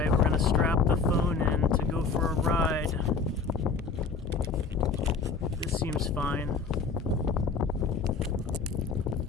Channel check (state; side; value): quieter; right; 4.8 dB